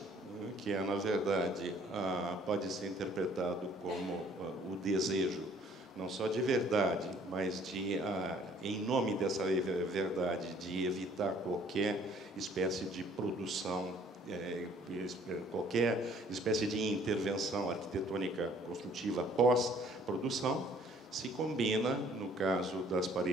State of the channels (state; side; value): normal; both; correlation 0.58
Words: que é, na verdade, pode ser interpretado como o desejo, não só de verdade, mas em nome dessa verdade, de evitar qualquer espécie de produção, qualquer espécie de intervenção arquitetônica construtiva pós-produção, se combina, no caso das